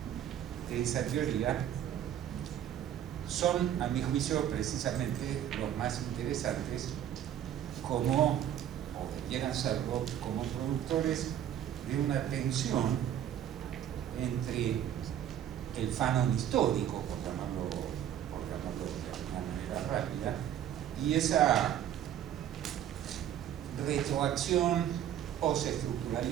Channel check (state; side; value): quieter; left; 10.4 dB